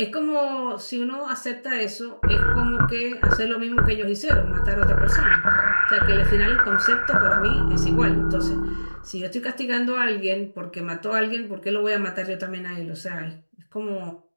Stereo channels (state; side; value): inverted; both; correlation -1.00